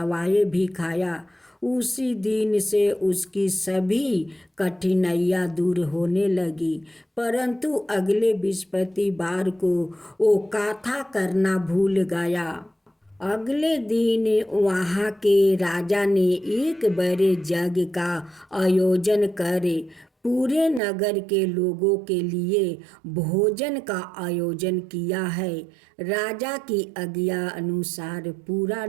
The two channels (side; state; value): left; drops out; at 20.8 s